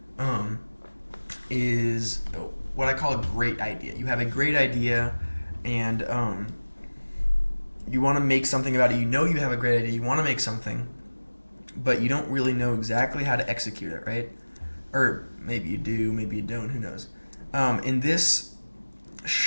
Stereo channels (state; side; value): inverted; both; correlation -1.00